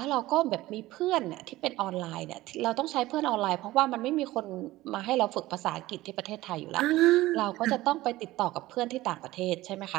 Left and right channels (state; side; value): quieter; left; 17.4 dB